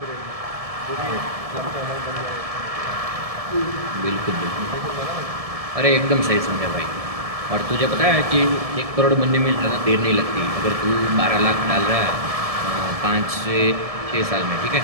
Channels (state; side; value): late; left; 1.7 ms